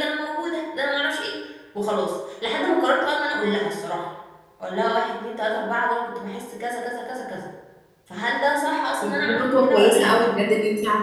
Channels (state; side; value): identical; both; correlation 1.00